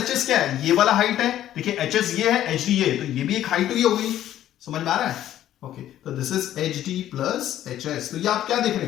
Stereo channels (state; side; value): quieter; right; 12.2 dB